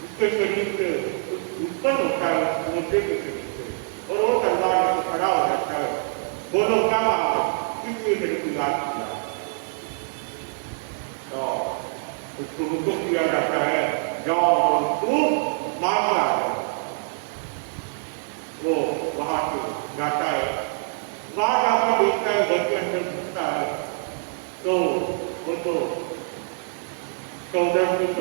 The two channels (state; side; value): silent; left; digital silence